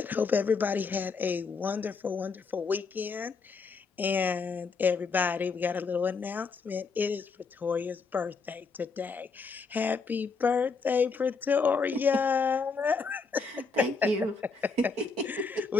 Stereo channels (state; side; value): quieter; right; 4.7 dB